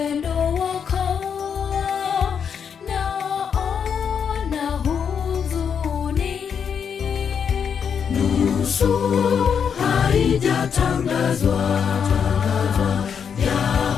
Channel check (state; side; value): quieter; right; 7.2 dB